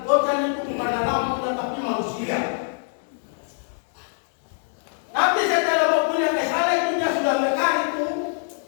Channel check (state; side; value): silent; right; 63 dB below the other